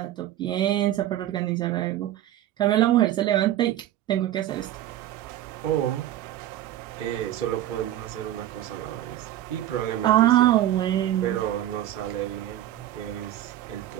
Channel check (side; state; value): left; quieter; 13.0 dB